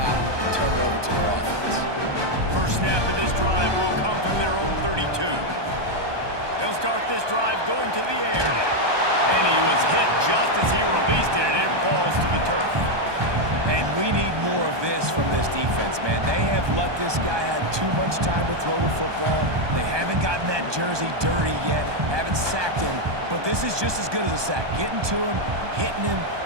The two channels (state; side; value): late; left; 1.2 ms